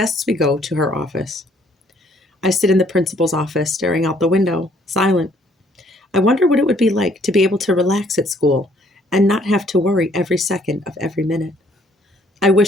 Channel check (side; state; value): both; normal; correlation 0.63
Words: we go to her office. I sit in the principal's office, staring out the window, silent. I wonder what it would be like to be able to relax at school and not have to worry every second of every minute. I